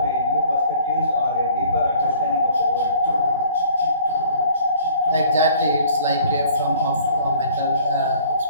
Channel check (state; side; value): inverted; both; correlation -0.52